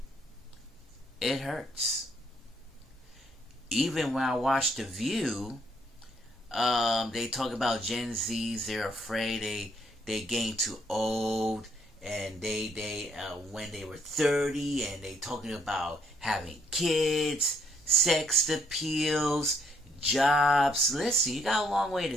It hurts. Even when I watch The View, they talk about Gen Zs, they're afraid they getting too old. And they when they were 30, and they talking about having kids, sex appeals, jobs. Listen, you got a long way to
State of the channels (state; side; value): normal; both; correlation 0.70